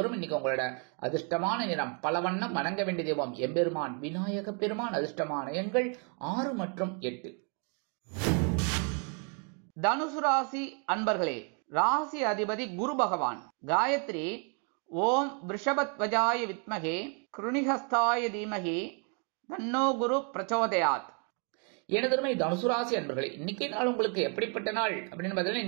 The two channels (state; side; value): quieter; left; 38.9 dB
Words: இன்னைக்கு உங்களோட அதிர்ஷ்டமான நிறம் பலவண்ணம். வணங்க வேண்டிய தெய்வம் எம்பெருமான் விநாயக பெருமான். அதிர்ஷ்டமான எண்கள் 6 மற்றும் 8. தனுசு ராசி அன்பர்களே, ராசி அதிபதி குரு பகவான். காயத்ரி ஓம் ரிஷபத்வஜாய வித்மகே கிருணிஹஸ்தாய தீமகி தன்னோ குரு பிரச்சோதயாத். எனதருமை தனுசு ராசி அன்பர்களே, இன்னைக்கு நாள் உங்களுக்கு எப்படிப்பட்ட நாள் அப்படின்னு பார்த்தீங்கன்னா,